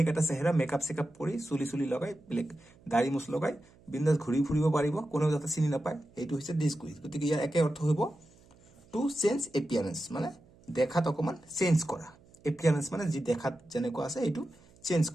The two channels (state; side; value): noise; right; hum, 27 dB below the sound